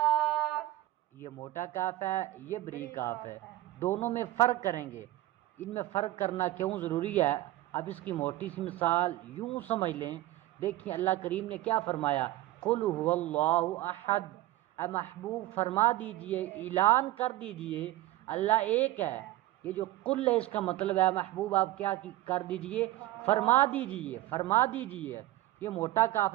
یہ موٹا کاف ہے، یہ بریک کاف ہے، دونوں میں فرق کریں گے. ان میں فرق کرنا کیوں ضروری ہے؟ اب اس کی موٹی سی مثال یوں سمجھ لیں. دیکھیں اللہ کریم نے کیا فرمایا، قل هو اللہ احد. اے محبوب فرما دیجئے، اعلان کر دیجئے اللہ ایک ہے. یہ جو قل ہے اس کا مطلب ہے محبوب آپ کیا کر دیجئے، فرما دیجئے، فرما دیجئے. یہ موٹا کاف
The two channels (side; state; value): left; quieter; 15.9 dB